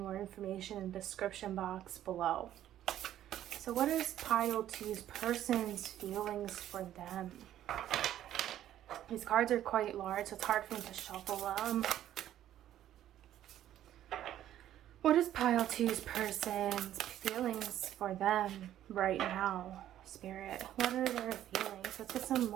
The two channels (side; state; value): left; quieter; 12.0 dB